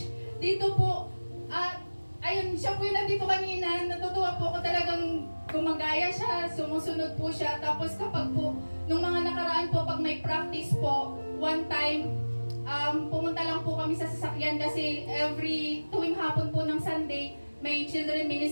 dito po, ayun, siya po yung nandito kanina, natutuwa po ako talagang gumagaya siya, sumusunod po siya. Tapos kapag po, nung mga nakaraan po, pag may practice po, one time, pumunta lang po kami sa sasakyan kasi tuwing hapon po ng Sunday, may children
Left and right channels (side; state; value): both; inverted; correlation -1.00